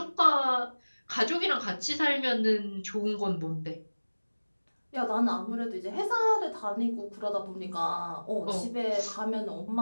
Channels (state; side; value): inverted; both; correlation -1.00